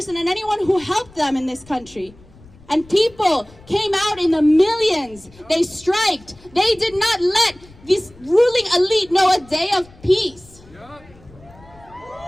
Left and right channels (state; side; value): noise; left; rumble, 24 dB below the sound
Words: and anyone who helped them in this country. And people came out in the millions. They striked. They did not let this ruling elite know a day of peace.